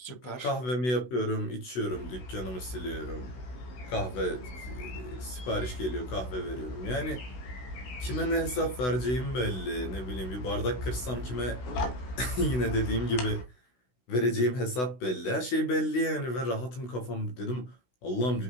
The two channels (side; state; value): right; late; 16 ms